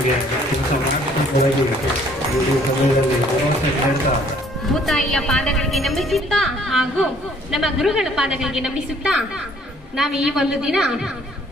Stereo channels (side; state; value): both; normal; correlation 0.60